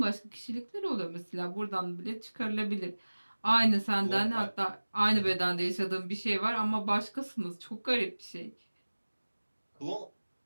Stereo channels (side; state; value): both; inverted; correlation -1.00